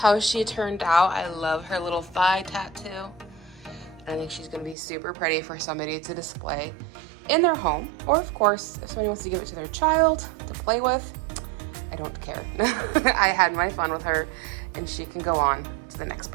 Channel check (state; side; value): drops out; left; at 4.8 s